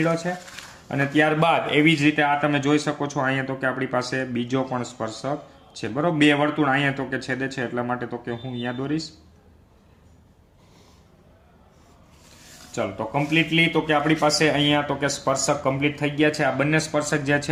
છે અને ત્યારબાદ એવી જ રીતે આ તમે જોઈ શકો છો અહીંયા તો કે આપણી પાસે બીજો પણ સ્પર્શક છે. બરોબર, બે વર્તુળ અહીંયા તો કે છેદે છે એટલા માટે તો કે હું અહીંયા દોરીશ. ચાલો તો કમ્પ્લીટલી તો કે આપણી પાસે અહીંયા તો કે સ્પર્શક કમ્પ્લીટ થઈ ગયા છે. આ બંને સ્પર્શક જ્યાં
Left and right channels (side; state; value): both; identical; correlation 1.00